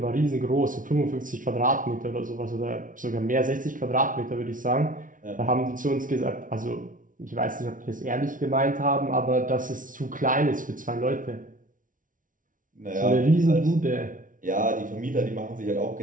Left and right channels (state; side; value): late; left; 0.38 ms